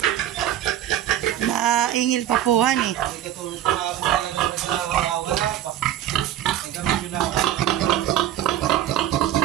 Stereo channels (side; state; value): left; quieter; 12.3 dB